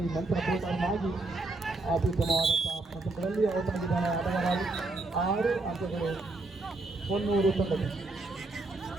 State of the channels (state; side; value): quieter; left; 3.1 dB